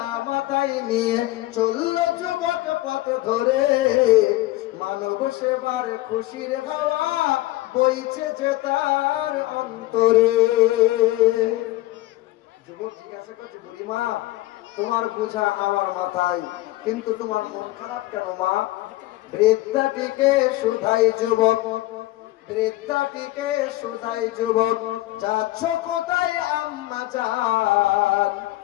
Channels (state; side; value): quieter; right; 17.7 dB